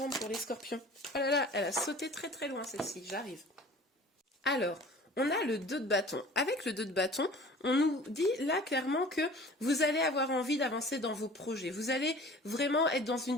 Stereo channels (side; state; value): both; normal; correlation 0.45